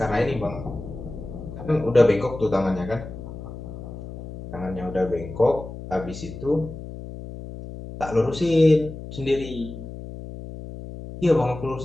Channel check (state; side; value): noise; left; hum, 11 dB below the sound